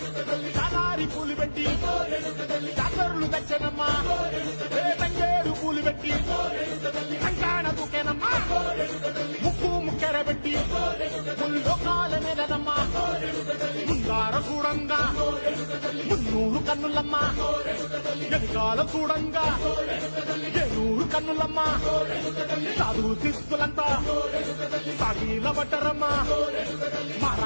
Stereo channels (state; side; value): inverted; both; correlation -1.00